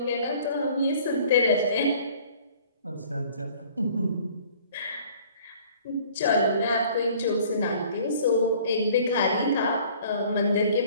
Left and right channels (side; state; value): both; inverted; correlation -0.52